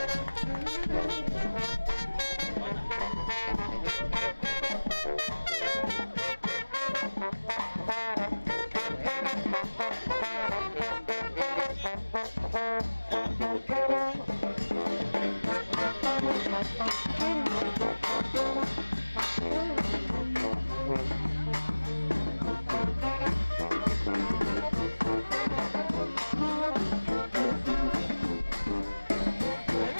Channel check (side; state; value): both; inverted; correlation -1.00